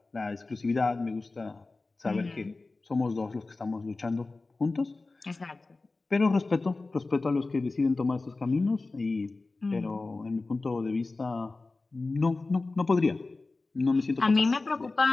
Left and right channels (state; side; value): quieter; right; 3.5 dB